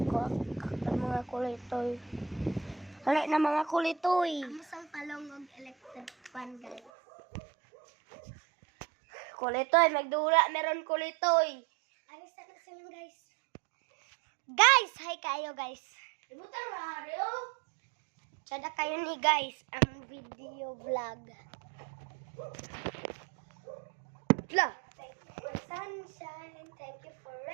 at mga kulitoy. Hali na mga kulitoy. Amusang palong og electric fan, guys. Kulitoy, magdula, meron kulitoy. Alis na sila, guys. Guys, hi kayo, guys. Ibutan radio. Sada kayo ni guys ang video vlog. Blah. Thank you for sunshine. Thank you for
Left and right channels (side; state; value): left; drops out; at 6.9 s